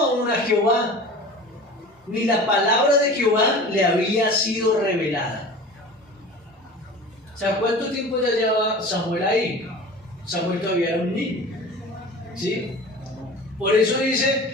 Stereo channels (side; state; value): both; normal; correlation 0.38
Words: a Jehová, ni la palabra de Jehová le había sido revelada. O sea, ¿cuánto tiempo ya lleva Samuel ahí? Samuel todavía era un niño, ¿sí? Por eso